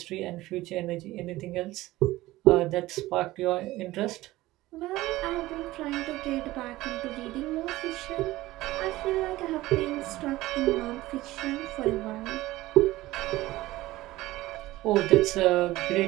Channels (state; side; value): quieter; left; 17.6 dB